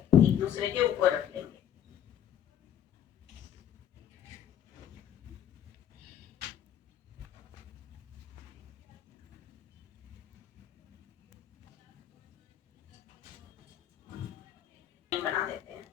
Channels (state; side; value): quieter; right; 10.0 dB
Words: एक दूसरे के ऊपर रख लेंगे। बना देते हैं।